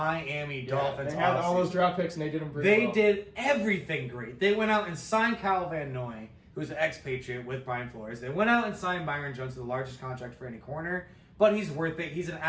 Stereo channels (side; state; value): both; identical; correlation 1.00